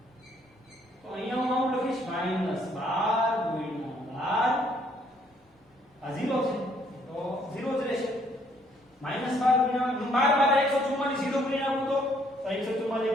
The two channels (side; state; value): both; normal; correlation 0.66